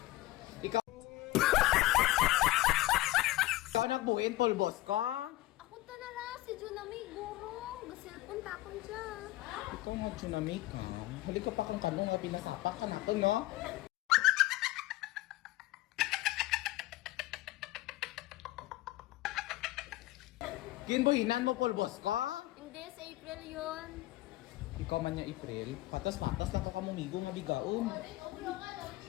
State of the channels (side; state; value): right; quieter; 17.7 dB